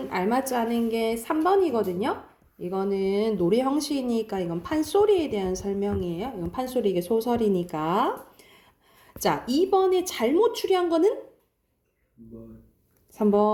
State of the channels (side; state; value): both; identical; correlation 1.00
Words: 알맞지 않은 게 3번이거든요. 이거는 노래 형식이니까 이건 판소리에 대한 설명이에요. 이건 판소리, 이게 소설이니까. 자, 2번에 잘못 추리한 거는